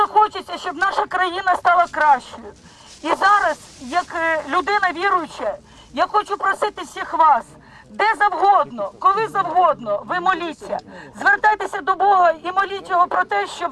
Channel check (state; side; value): identical; both; correlation 1.00